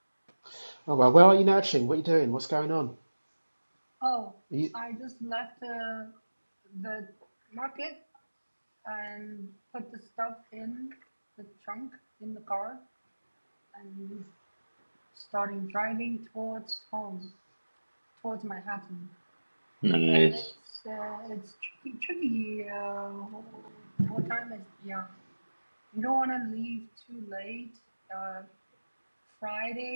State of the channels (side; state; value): both; inverted; correlation -1.00